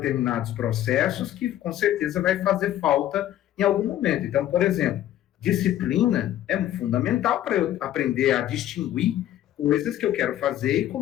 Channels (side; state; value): right; quieter; 12.5 dB